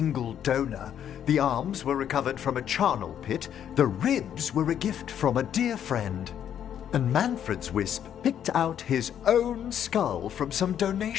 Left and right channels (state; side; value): quieter; right; 9.5 dB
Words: donor. The arms were recovered from a charnel pit. The ribs were a gift from a dear friend. And Manfred's wisp picked out his own skull from some